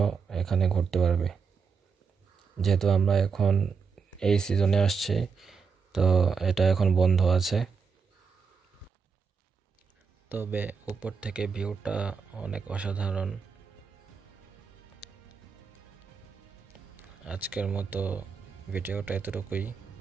এখানে ঘুরতে পারবে। যেহেতু আমরা এখন এই সিজনে আসছি, তো এটা এখন বন্ধ আছে। তবে উপর থেকে ভিউটা অনেক অসাধারণ। আজকের মতো ভিডিওটা এতটুকুই।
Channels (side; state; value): left; quieter; 5.5 dB